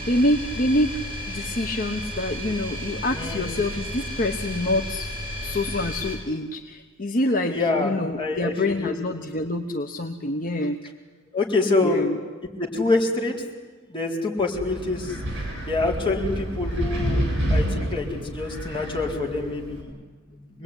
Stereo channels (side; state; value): both; normal; correlation 0.51